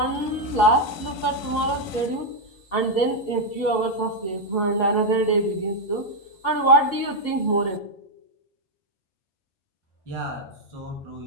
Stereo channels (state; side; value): late; right; 5.2 ms